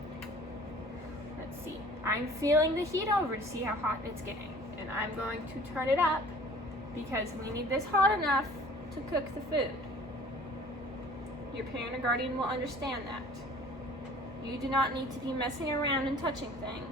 Let's see. I'm feeling the heat over to see how hot it's getting. And I'm going to turn it up because we need this hot enough to cook the food. Your parent or guardian will understand that. You do not need to be messing around and touching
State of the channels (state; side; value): normal; both; correlation 0.49